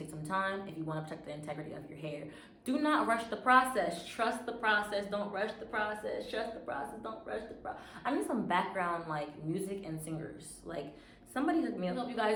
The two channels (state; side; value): identical; both; correlation 1.00